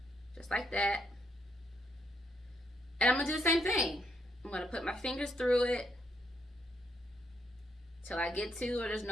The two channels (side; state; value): both; normal; correlation 0.75